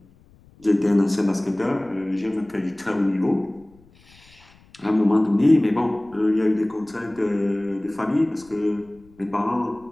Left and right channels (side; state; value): left; noise; rumble, 28 dB below the sound